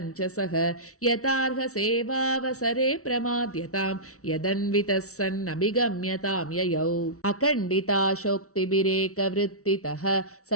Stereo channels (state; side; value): late; right; 0.64 ms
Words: यथार्ह सेवावसरे प्रमाद्यतां यदन्वितः सन्नभिगम्यतां ययौ अखण्डिताशोक्तिभिरेकवृत्तितः